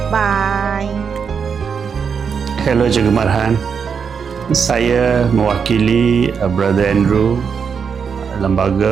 Bye. Hello Cikgu Marhan. Saya mewakili Brother Andrew,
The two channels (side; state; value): left; quieter; 6.4 dB